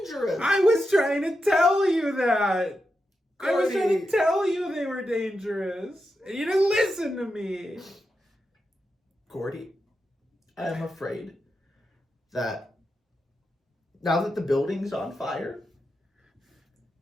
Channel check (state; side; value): normal; both; correlation 0.88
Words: I was trying to tell you that! I was trying Gordy. to tell you they were dangerous! And you didn't listen to me! Gordy, I am afraid that now that the building's on fire